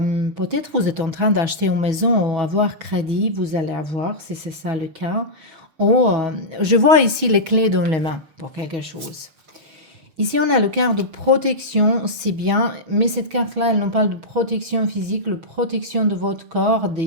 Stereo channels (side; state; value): left; late; 6.2 ms